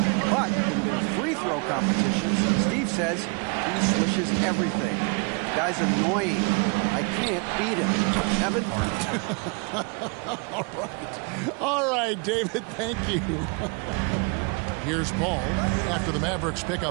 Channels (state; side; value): quieter; left; 32.8 dB